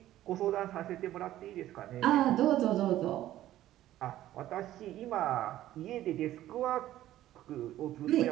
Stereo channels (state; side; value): quieter; left; 13.7 dB